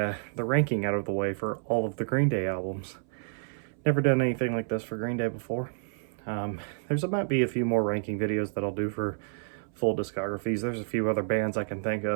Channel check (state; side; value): silent; left; 58 dB below the other